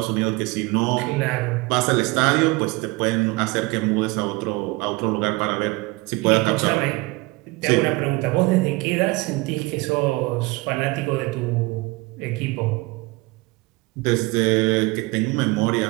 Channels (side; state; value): left; quieter; 23.5 dB